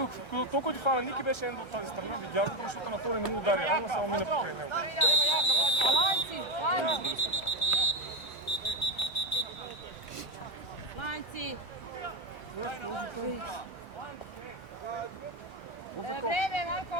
толкова ти фана Ники беше Ендъл от тази страна, видях го, защото на втори не му удари, ама само мина покрай него. Lanci, lanci. Lanci. Vreme, Marko.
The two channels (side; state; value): right; late; 1.3 ms